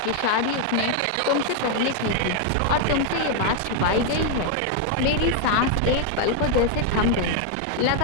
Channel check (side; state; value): both; different; correlation 0.00